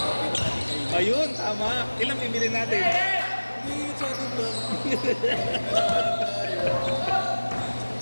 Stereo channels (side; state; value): both; inverted; correlation -1.00